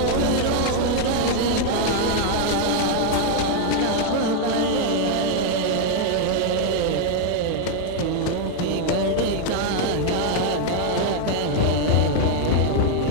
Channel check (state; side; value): different; both; correlation 0.00